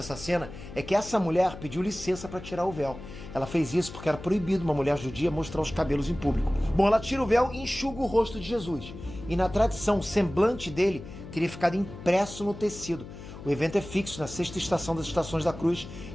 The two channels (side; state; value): left; noise; hum, 13 dB below the sound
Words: cena é que essa mulher pediu licença para tirar o véu. Ela fez isso porque era proibido uma mulher judia mostrar os cabelos em público. Bom, ela tira o véu e enxuga o rosto de Jesus. E na tradição, o semblante dele teria ficado impresso no tecido. O evento é fixo na sexta estação das Estações da Cruz